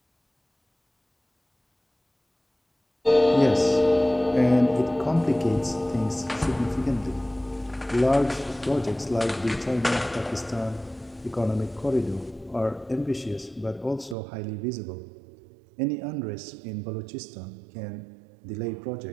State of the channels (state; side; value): drops out; left; at 14.2 s